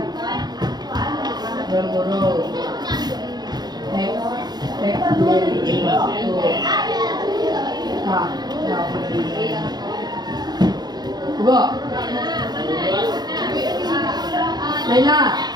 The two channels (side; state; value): left; late; 0.20 ms